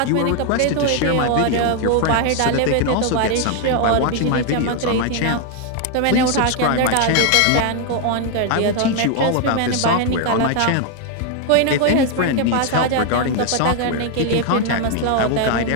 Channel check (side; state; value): both; different; correlation 0.01